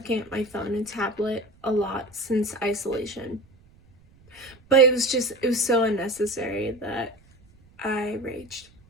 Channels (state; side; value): noise; right; rumble, 28 dB below the sound